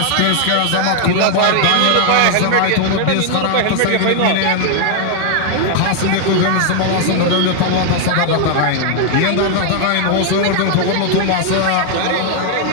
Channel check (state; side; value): different; both; correlation 0.00